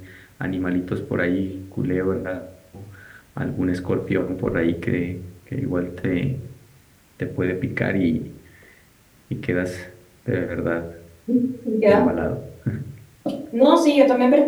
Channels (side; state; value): both; identical; correlation 1.00